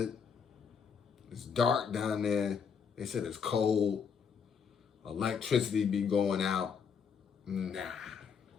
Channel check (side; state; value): right; quieter; 6.5 dB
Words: It's dark down there. They said it's cold. Electricity be going out. Nah.